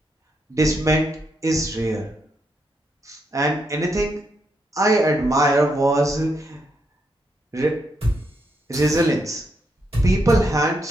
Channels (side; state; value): both; normal; correlation 0.79